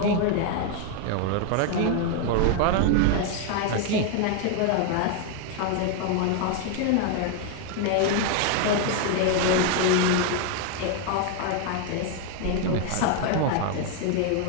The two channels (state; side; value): different; both; correlation 0.00